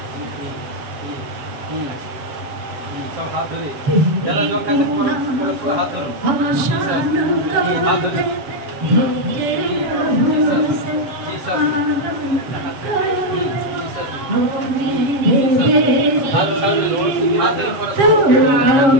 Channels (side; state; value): left; late; 7.4 ms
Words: যারা যোগ আছেন পরস্পর হাত ধরুন, হাত ধরুন। हाथ सामने लो, हाथ धरे पड़ो।